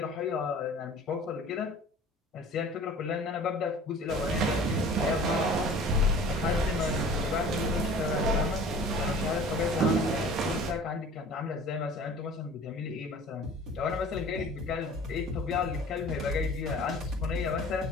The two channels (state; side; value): normal; both; correlation 0.45